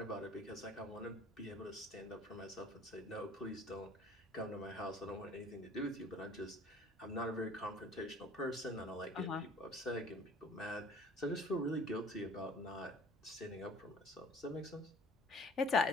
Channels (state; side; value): normal; both; correlation 0.51